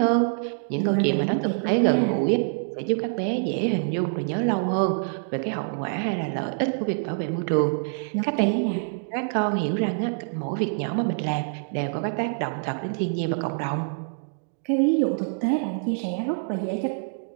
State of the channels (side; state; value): left; silent; digital silence